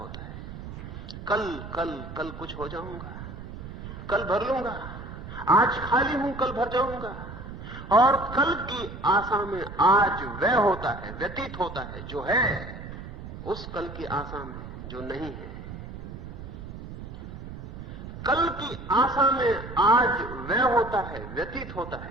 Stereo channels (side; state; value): right; noise; rumble, 11 dB below the sound